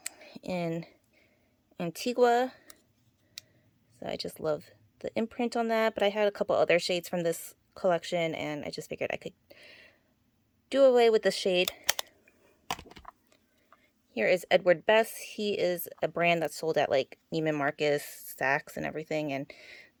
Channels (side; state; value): both; identical; correlation 1.00